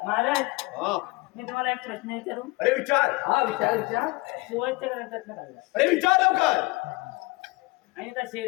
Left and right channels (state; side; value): quieter; right; 24.3 dB